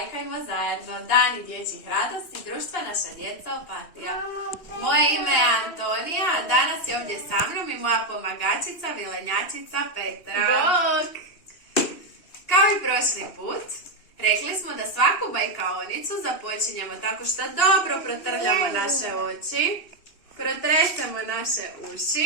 zajedno. Dani dječjih radosti, društva naša djeca Opatija. Moje ime je Antonija, a danas je ovdje sa mnom i moja pomagačica, vilenjačica Petra. Bok! Kao i prošli put, rekli smo da svaku bajkaonicu započinjemo tako što dobro protrljamo naše oči, protresemo naše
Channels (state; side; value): late; right; 2.7 ms